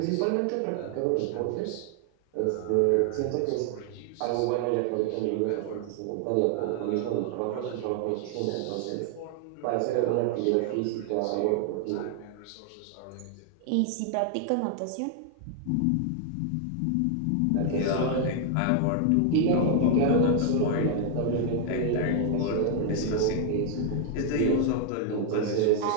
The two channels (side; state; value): both; different; correlation 0.00